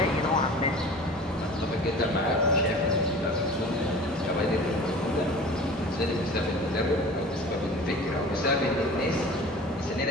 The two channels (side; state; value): both; normal; correlation 0.40